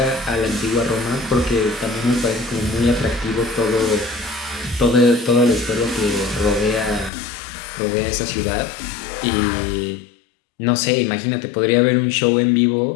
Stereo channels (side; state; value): right; drops out; at 7.1 s